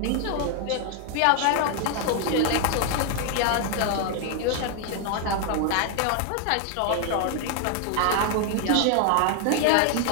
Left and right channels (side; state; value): both; different; correlation 0.00